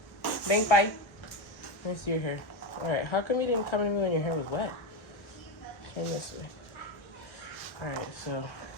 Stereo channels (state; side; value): late; right; 1.4 ms